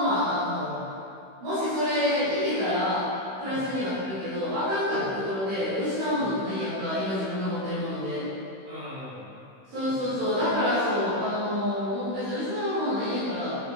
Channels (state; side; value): late; left; 16 ms